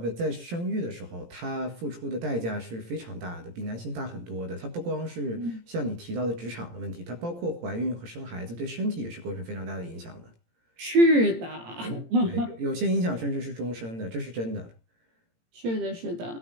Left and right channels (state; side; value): late; left; 17 ms